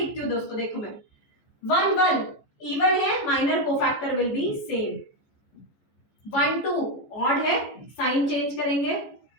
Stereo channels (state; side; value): late; right; 14 ms